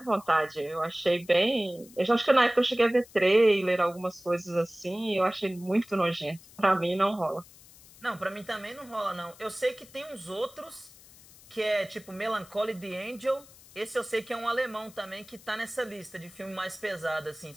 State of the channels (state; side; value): noise; left; hiss, 22 dB below the sound